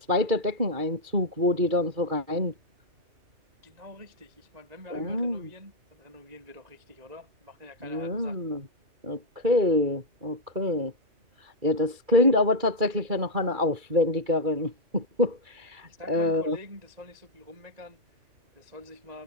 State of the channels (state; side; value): late; left; 2.3 ms